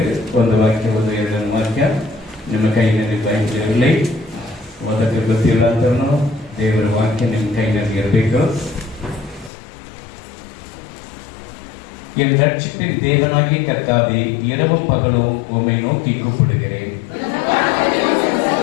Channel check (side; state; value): right; drops out; at 9.5 s